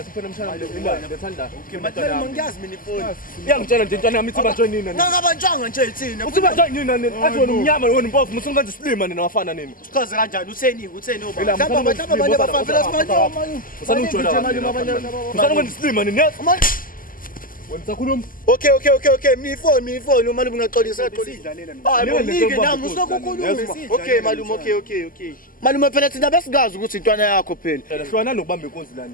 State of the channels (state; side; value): late; right; 0.41 ms